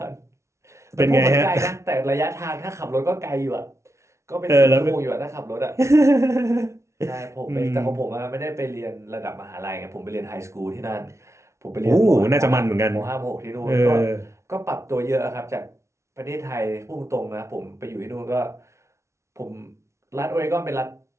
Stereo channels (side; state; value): left; late; 0.13 ms